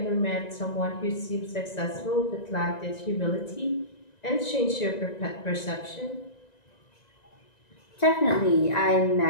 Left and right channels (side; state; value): right; late; 1.9 ms